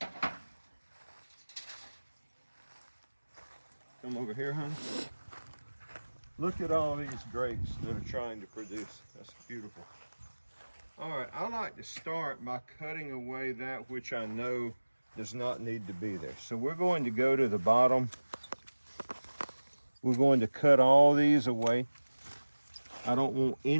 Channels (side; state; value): both; inverted; correlation -1.00